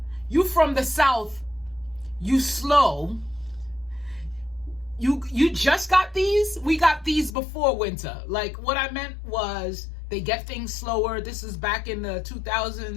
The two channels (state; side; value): drops out; right; at 7.3 s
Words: you from the South, you slow. You just got these? We got these before winter. Like what I meant was they get things slower. This is back in the